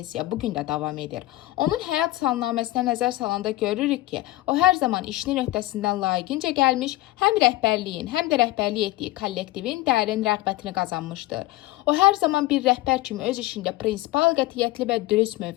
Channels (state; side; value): quieter; right; 17.6 dB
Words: bugün də davam edir. Onun həyat salnaməsinə nəzər salanda görürük ki, o hər zaman işinin öhdəsindən layiqincə gəlmiş, həm rəhbərliyin, həm də rəhbərlik etdiyi kollektivin dərin rəğbətini qazanmışdır. O hər zaman bir rəhbər kimi öz işində prinsipal, qətiyyətli və dürüst